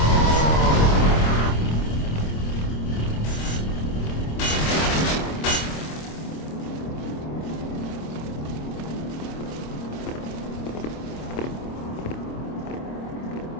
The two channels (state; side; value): late; right; 26 ms